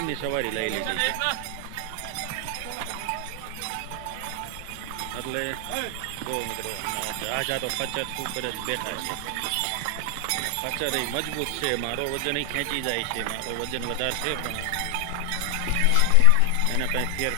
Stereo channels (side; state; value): both; different; correlation 0.00